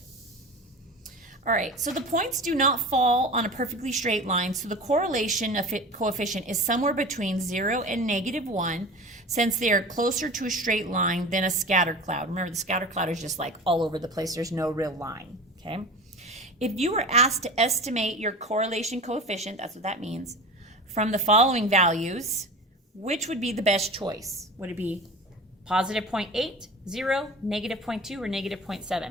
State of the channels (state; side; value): normal; both; correlation 0.34